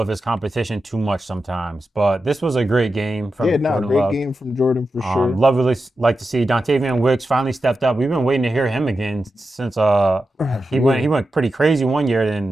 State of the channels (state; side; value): normal; both; correlation 0.90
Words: of his competition too much sometimes. But this was a great game from Jordan great Love. game from Jordan for sure. Love really like to see Dontavian Wicks finally stepped up. We've been waiting to hear him again since he went pretty crazy one year,